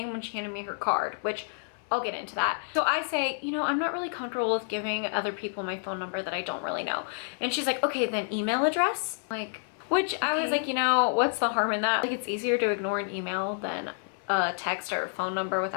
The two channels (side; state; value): right; silent; 59 dB below the other